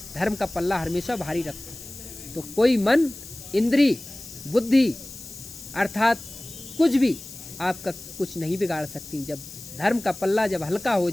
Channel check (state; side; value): noise; left; hiss, 15 dB below the sound